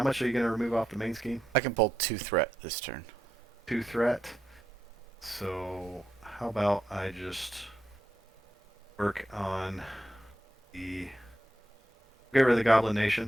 much are you going to remove off the main scheme? I can pull 2 threat this turn. 2 threat. So how about I just work on get rid of the Goblin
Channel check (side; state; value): both; normal; correlation 0.84